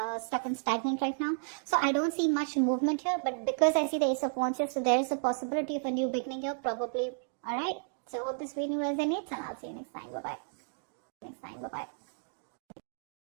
stuck and stagnant right now. So I don't see much movement here, but because I see the Ace of Wands here, so there is a possibility of a new beginning here, probably. All right. So hope this video resonates, and I'll see you next time. Bye bye.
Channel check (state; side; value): silent; left; digital silence